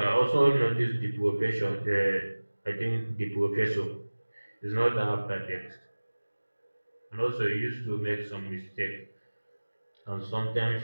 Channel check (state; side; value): inverted; both; correlation -1.00